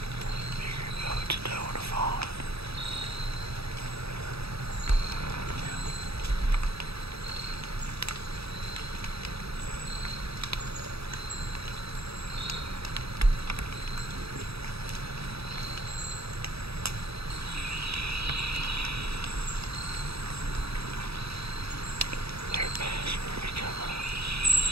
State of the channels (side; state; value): left; late; 0.77 ms